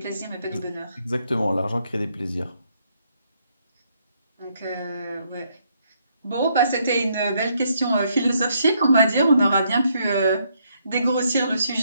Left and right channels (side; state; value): both; inverted; correlation -0.73